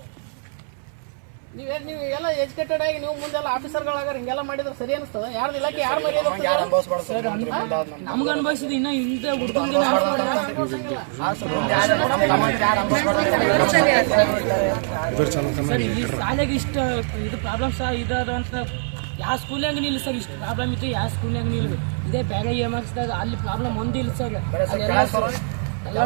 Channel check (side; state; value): left; silent; digital silence